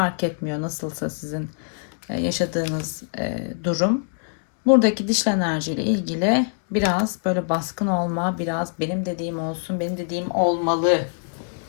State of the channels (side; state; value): right; silent; 63 dB below the other